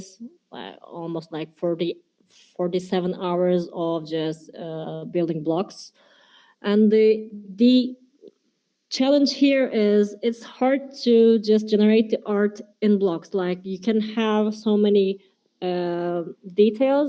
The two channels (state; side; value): identical; both; correlation 1.00